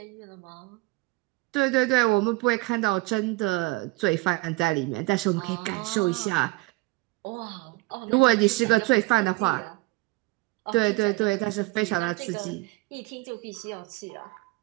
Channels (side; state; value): left; quieter; 23.5 dB